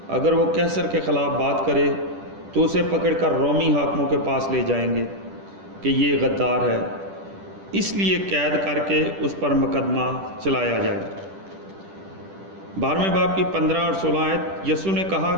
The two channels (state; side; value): late; left; 10 ms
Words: اگر وہ قیصر کے خلاف بات کرے تو اسے پکڑ کر رومی حاکموں کے پاس لے جائیں گے کہ یہ غدار ہے، اس لیے قید کر کے اس پر مقدمہ چلایا جائے۔ 12ویں باب کی 15 اور 16 آیت۔ یسوع نے